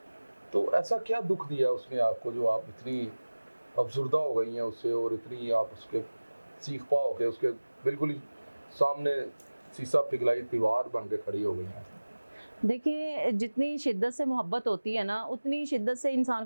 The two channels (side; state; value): both; inverted; correlation -1.00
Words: तो ऐसा क्या दुख दिया उसने आपको जो आप इतनी अफसुर्दा हो गई हैं उससे और इतनी आप उसके सीख पाओ के उसके बिल्कुल ही सामने शीशा पिघलाई दीवार बन के खड़ी हो गई हैं? देखिए, जितनी शिद्दत से मोहब्बत होती है ना, उतनी शिद्दत से इंसान